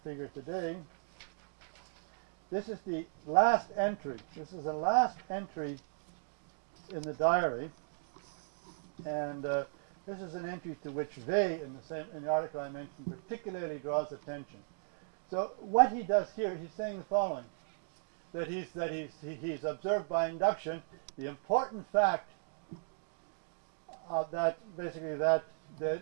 figure today. This is the last entry. This is the last entry in the diary. And this is an entry to which Vey, in the article I mentioned, particularly draws attention. So what he does here, he's saying the following: that he's observed by induction the important fact that basically that the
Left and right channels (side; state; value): left; silent; digital silence